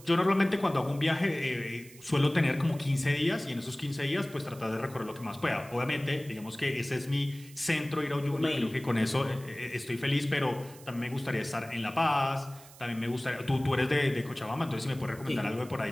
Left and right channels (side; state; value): right; noise; hiss, 21 dB below the sound